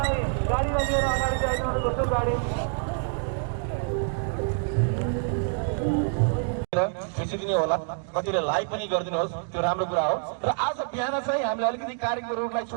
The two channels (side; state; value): left; silent; 60 dB below the other